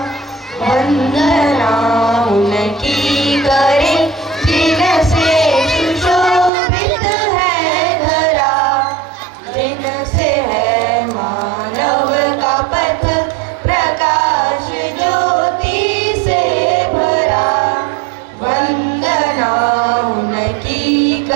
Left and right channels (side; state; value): left; drops out; at 6.5 s